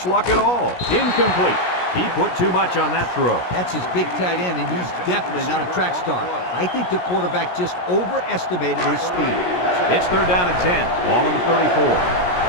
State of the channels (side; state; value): right; late; 17 ms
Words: luck at all. Incomplete. He put too much on that throw. That's his big tight end, and he's definitely not a track star. I think the quarterback just overestimated his speed. It's 3rd down and 10. Ball on the 34.